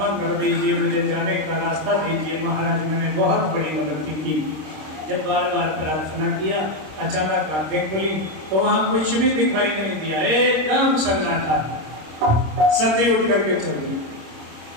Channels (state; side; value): late; left; 26 ms